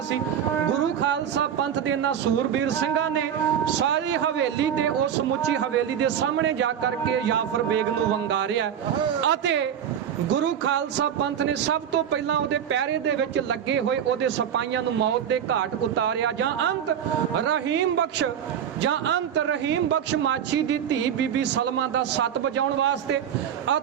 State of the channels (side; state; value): left; quieter; 9.0 dB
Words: ਸੀ। ਗੁਰੂ ਖਾਲਸਾ ਪੰਥ ਦੇ ਇਹਨਾਂ ਸੂਰਬੀਰ ਸਿੰਘਾਂ ਨੇ ਸਾਰੀ ਹਵੇਲੀ ਤੇ ਉਸ ਸਮੁੱਚੀ ਹਵੇਲੀ ਦੇ ਸਾਹਮਣੇ ਜਾ ਕਰਕੇ ਜਾਫਰ ਬੇਗ ਨੂੰ ਵੰਗਾਰਿਆ ਅਤੇ ਗੁਰੂ ਖਾਲਸਾ ਪੰਥ ਨੇ ਸਭ ਤੋਂ ਪਹਿਲਾਂ ਉਹਦੇ ਪਹਿਰੇ ਦੇ ਵਿੱਚ ਲੱਗੇ ਹੋਏ ਉਹਦੇ ਸਿਪਾਹੀਆਂ ਨੂੰ ਮੌਤ ਦੇ ਘਾਟ ਉਤਾਰਿਆ। ਜਾਂ ਅੰਤ ਰਹੀਮ ਬਖਸ਼ ਮਾਛੀ ਦੀ ਧੀ ਬੀਬੀ ਸਲਮਾ ਦਾ ਸੱਤ ਵਜਾਉਣ ਵਾਸਤੇ